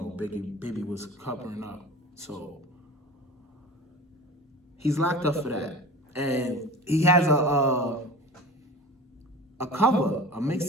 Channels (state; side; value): normal; both; correlation 0.36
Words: Bibby was covering up. So he's locked up for that. And he has a cover, a